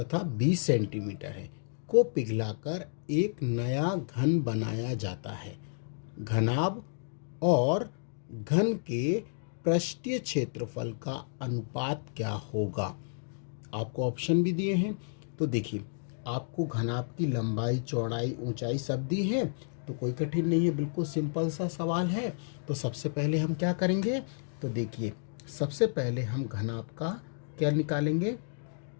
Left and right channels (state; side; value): silent; right; digital silence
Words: 20 सेंटीमीटर है को पिघलाकर एक नया घन बनाया जाता है। घनाभ और घन के पृष्ठीय क्षेत्रफल का अनुपात क्या होगा। आपको ऑप्शन भी दिए हैं। तो देखिए, आपको घनाभ की लंबाई, चौड़ाई, ऊंचाई सब दी है, तो कोई कठिन नहीं है, बिल्कुल सिंपल सा सवाल है। तो सबसे पहले हम क्या करेंगे, तो देखिए सबसे पहले हम घनाभ का क्या निकालेंगे,